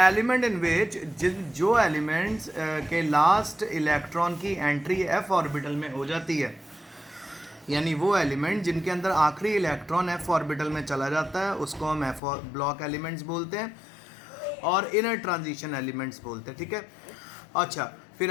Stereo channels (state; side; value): drops out; right; at 12.2 s